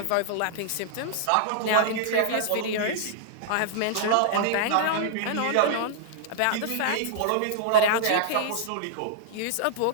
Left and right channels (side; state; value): both; different; correlation -0.01